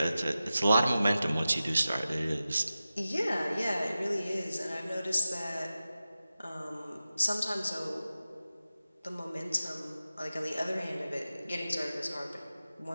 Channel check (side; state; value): both; inverted; correlation -0.94